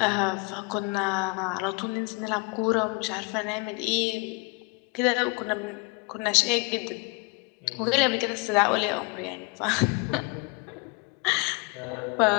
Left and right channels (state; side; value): quieter; right; 28.2 dB